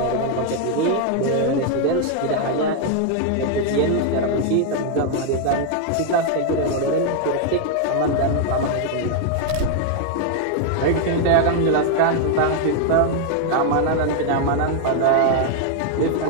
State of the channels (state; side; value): different; both; correlation 0.00